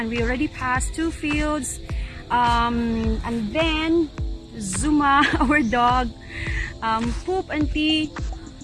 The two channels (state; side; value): identical; both; correlation 1.00